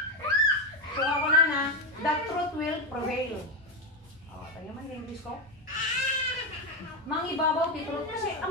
So ako na, the truth will prevail. Tayo man yung English ko. Mangibabaw ti truth, kasi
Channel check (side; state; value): both; normal; correlation 0.09